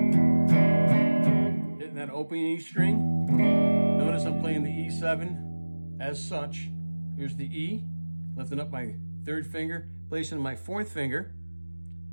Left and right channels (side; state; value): both; inverted; correlation -1.00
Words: that open E string. Notice I'm playing the E7 as such. Here's the E. Lifting up my 3rd finger. Placing my 4th finger